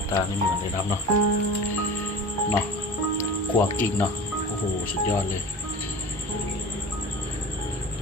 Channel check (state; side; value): normal; both; correlation 0.36